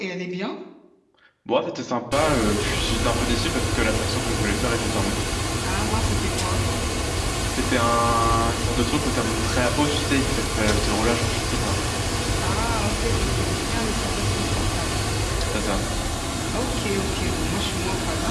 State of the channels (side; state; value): both; identical; correlation 1.00